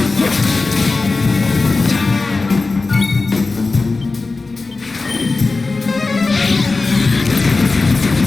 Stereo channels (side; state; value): right; quieter; 3.7 dB